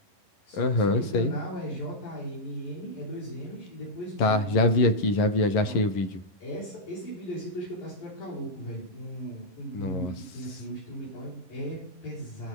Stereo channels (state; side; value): late; right; 11 ms